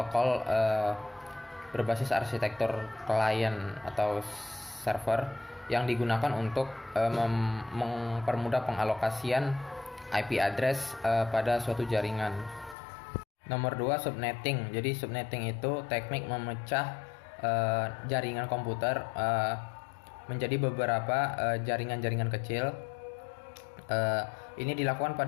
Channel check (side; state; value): right; drops out; at 12.8 s